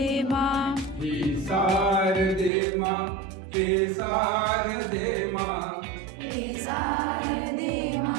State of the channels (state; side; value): drops out; left; at 2.5 s